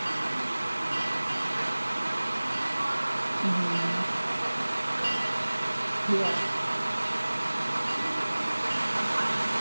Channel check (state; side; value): inverted; both; correlation -1.00